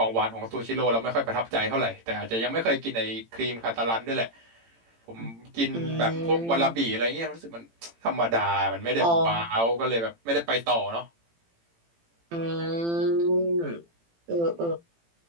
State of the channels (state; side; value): late; left; 18 ms